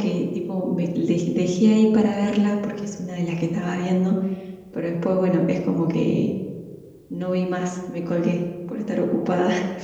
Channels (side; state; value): both; identical; correlation 1.00